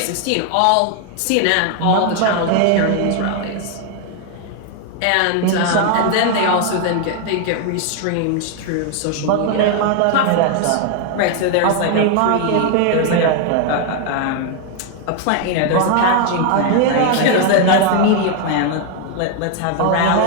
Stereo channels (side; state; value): both; different; correlation 0.00